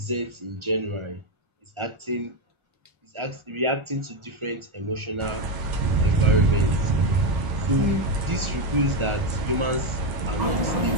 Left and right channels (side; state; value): left; late; 1.4 ms